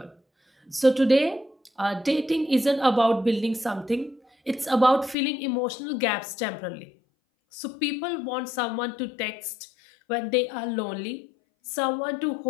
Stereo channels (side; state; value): right; drops out; at 5.2 s